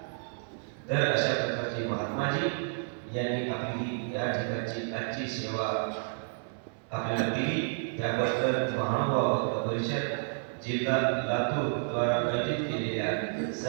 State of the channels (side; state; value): left; silent; 57 dB below the other